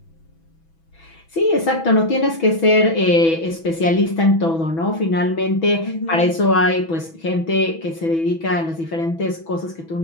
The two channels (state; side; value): late; right; 6.1 ms